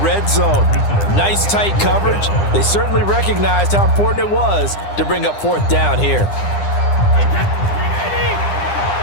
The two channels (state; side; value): late; right; 9.9 ms